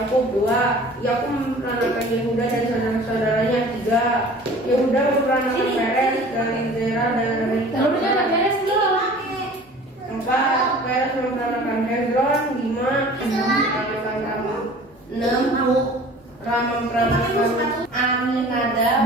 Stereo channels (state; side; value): normal; both; correlation 0.45